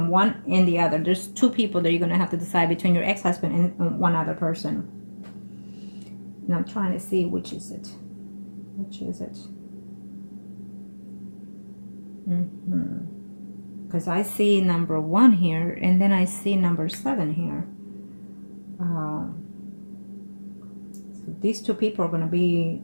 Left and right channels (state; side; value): inverted; both; correlation -1.00